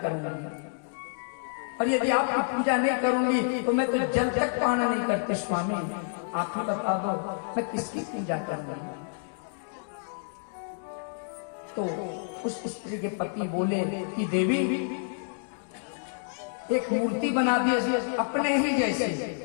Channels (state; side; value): silent; right; digital silence